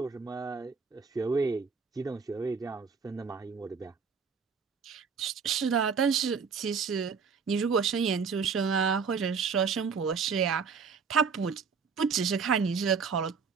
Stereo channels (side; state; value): left; quieter; 5.7 dB